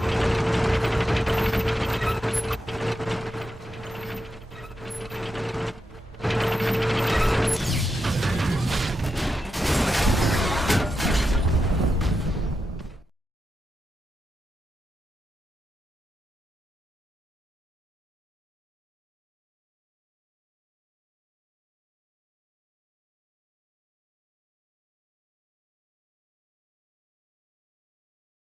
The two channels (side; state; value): both; normal; correlation 0.86